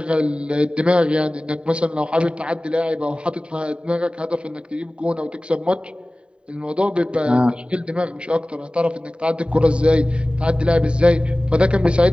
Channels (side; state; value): left; late; 0.054 ms